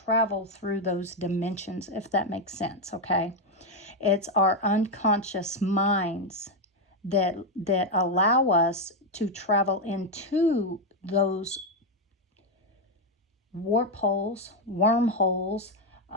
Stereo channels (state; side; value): normal; both; correlation 0.05